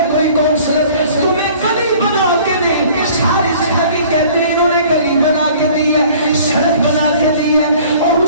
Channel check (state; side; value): inverted; both; correlation -0.51